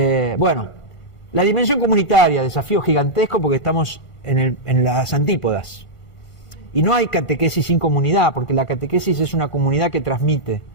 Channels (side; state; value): right; late; 1.5 ms